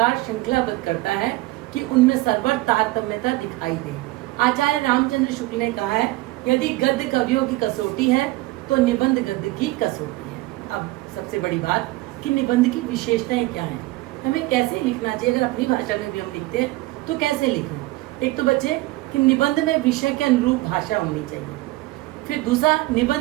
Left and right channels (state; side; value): quieter; left; 19.3 dB